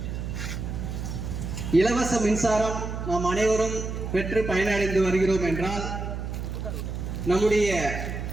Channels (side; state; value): right; noise; hum, 5 dB below the sound